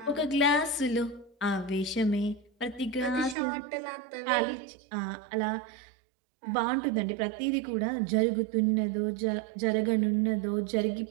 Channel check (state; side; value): drops out; left; at 3.4 s